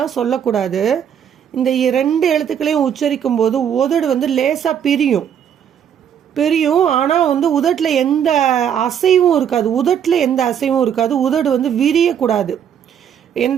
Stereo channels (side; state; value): left; quieter; 8.7 dB